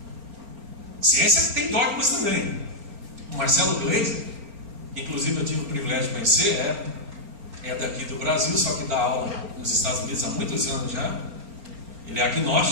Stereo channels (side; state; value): left; late; 4.3 ms